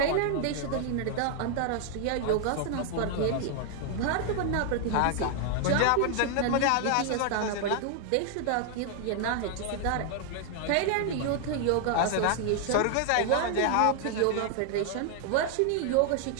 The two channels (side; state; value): both; different; correlation 0.00